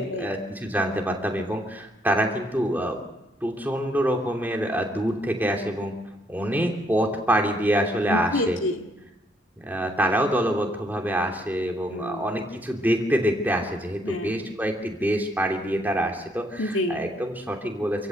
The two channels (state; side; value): normal; both; correlation 0.70